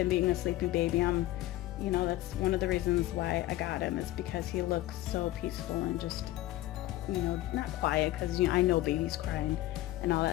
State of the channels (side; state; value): right; quieter; 15.9 dB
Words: being a sleeping baby. You know, that's one of the reasons why I got him, is because he looks so peaceful and just, you know, not quiet, because, you know, I know babies crying and all